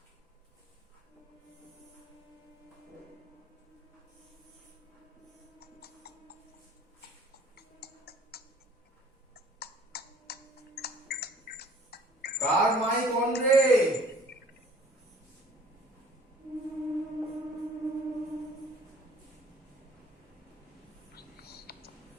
কার মাইক অন রে?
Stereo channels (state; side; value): normal; both; correlation 0.53